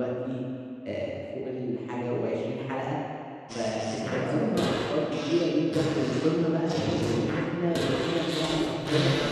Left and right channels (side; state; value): both; identical; correlation 1.00